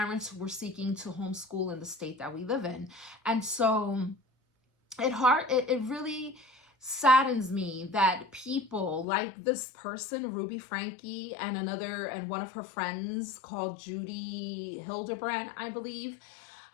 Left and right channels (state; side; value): drops out; right; at 9.1 s